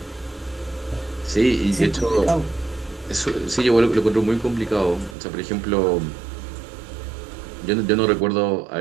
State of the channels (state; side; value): drops out; left; at 5.2 s